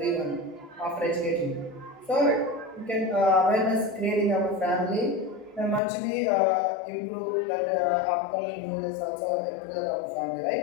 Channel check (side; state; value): right; drops out; at 5.8 s